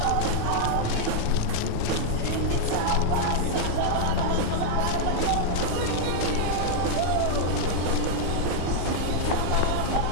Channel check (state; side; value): different; both; correlation -0.01